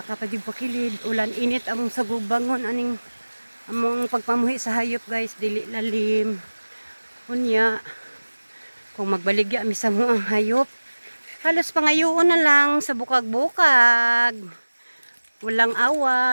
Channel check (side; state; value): both; inverted; correlation -1.00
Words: pa yung pakilid, ulan init among sagubangon aning among pagpamuhi sa hayop guys, dili lalim. Unya, kung magbaligya mi sa mo ang hayop, halos pangayoon na lang sa bukag-bukag. Walang